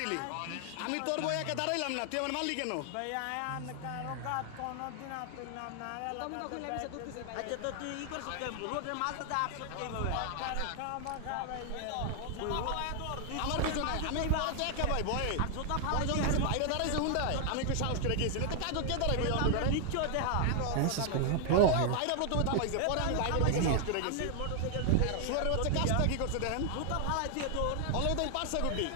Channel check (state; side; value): different; both; correlation 0.00